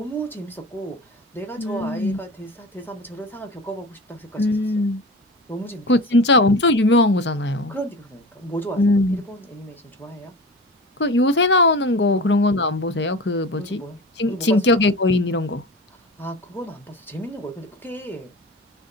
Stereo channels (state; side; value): normal; both; correlation 0.32